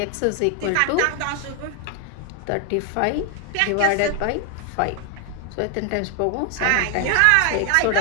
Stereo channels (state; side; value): different; both; correlation 0.00